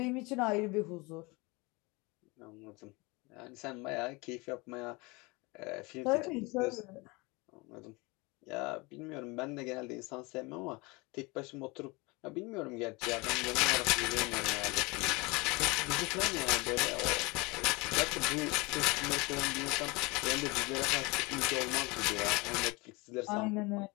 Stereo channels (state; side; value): quieter; right; 25.6 dB